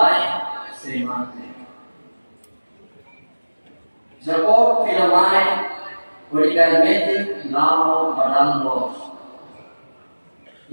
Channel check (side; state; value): both; inverted; correlation -1.00